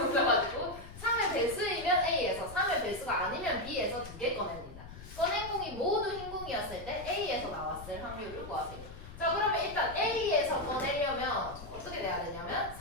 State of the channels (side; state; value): left; noise; rumble, 14 dB below the sound